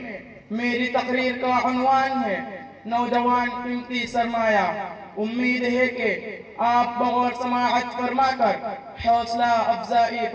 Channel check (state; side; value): identical; both; correlation 1.00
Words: میری تقریر کا عنوان ہے نوجوان قیمتی سرمایہ. امید ہے کہ آپ بغور سماعت فرما کر حوصلہ افزائی